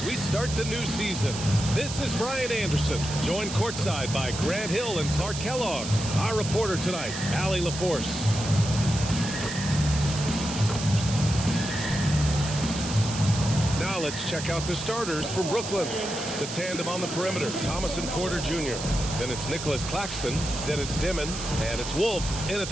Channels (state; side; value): noise; right; hiss, 8 dB below the sound